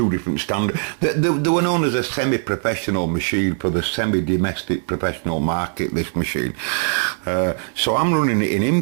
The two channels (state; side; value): silent; left; 65 dB below the other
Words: different standards. They were known as a semi-professional machine for the semi-domestic professional market, this machine. So I'm running it in